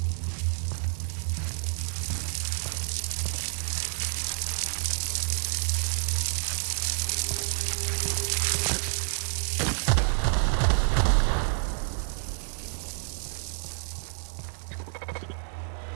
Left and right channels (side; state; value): left; silent; 59 dB below the other